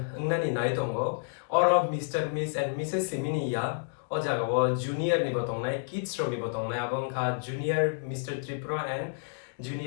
ngnani nai tongo oro Mr. Miss and Mrs Simini ya o jaga wo junior ni botong nai kids ro ni botong nai abong kha junior Mr. Tripura and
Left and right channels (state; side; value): silent; right; digital silence